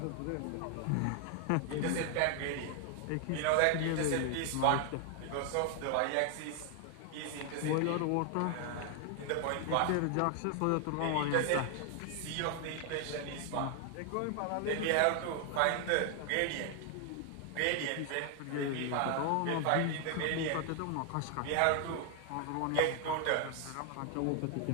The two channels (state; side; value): different; both; correlation 0.00